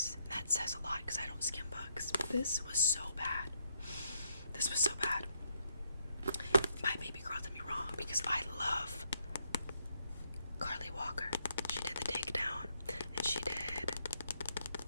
That says a lot because I don't skim books. This was so bad. My baby girl did me wrong because I love Carly Walker. She did The Takedown, and she did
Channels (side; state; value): both; inverted; correlation -0.76